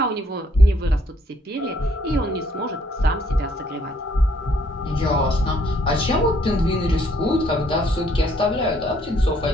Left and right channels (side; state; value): both; normal; correlation 0.67